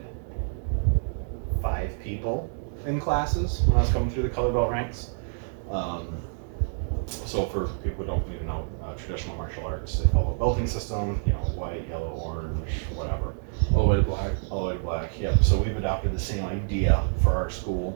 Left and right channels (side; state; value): left; silent; digital silence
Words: 5 people in classes when I was coming through the color belt ranks. So for people who don't even know traditional martial arts, they follow a belting system, white, yellow, orange, whatever. All the way to black. All the way to black, yep. So we've adopted the same idea for our school.